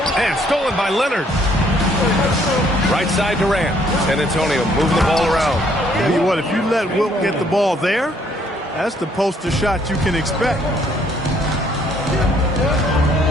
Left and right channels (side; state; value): both; normal; correlation 0.65